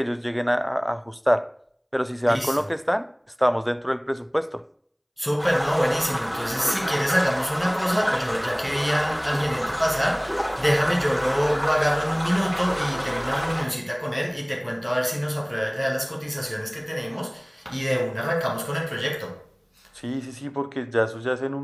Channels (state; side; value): identical; both; correlation 1.00